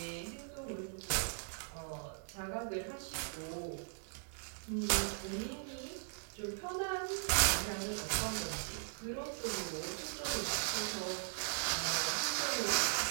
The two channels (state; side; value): silent; left; 52 dB below the other